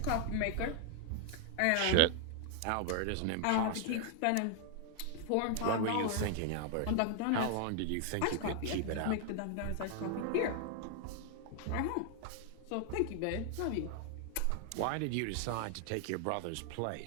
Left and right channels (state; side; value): different; both; correlation 0.00